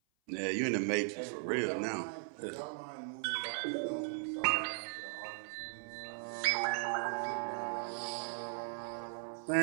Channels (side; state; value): left; silent; 52 dB below the other